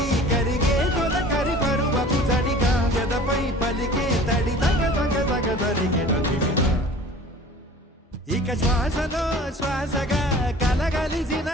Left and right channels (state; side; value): normal; both; correlation 0.45